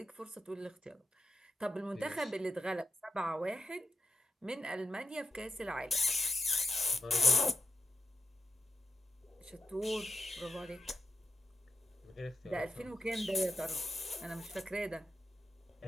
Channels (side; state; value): both; normal; correlation 0.85